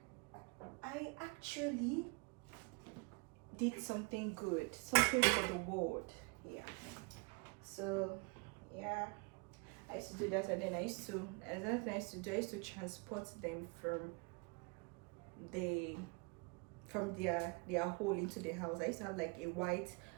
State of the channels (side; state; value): left; quieter; 30.4 dB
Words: I actually did something good, something for the world. Yeah. So yeah, I used to do that, and then I used to transport them from their hole into the house. I used to have like a white